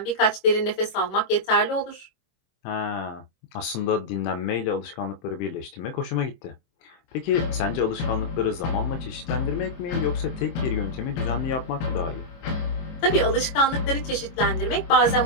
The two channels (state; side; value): late; right; 24 ms